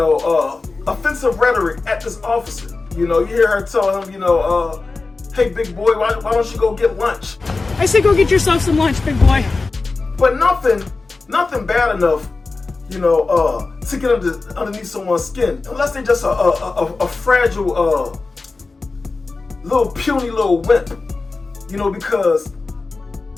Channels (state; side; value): quieter; right; 3.8 dB